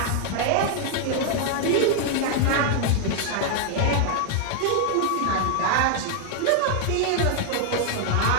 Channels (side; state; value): both; different; correlation 0.00